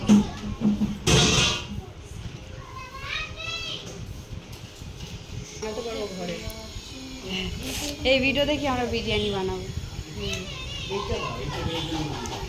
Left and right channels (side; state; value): both; identical; correlation 1.00